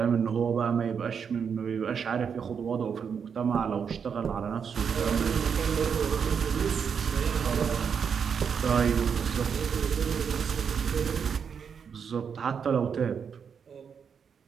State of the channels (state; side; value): quieter; left; 6.8 dB